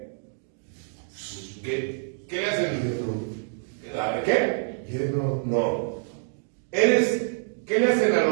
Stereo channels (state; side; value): silent; left; digital silence